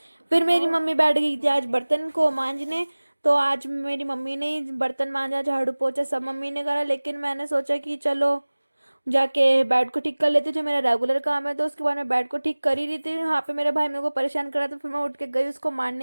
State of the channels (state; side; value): inverted; both; correlation -1.00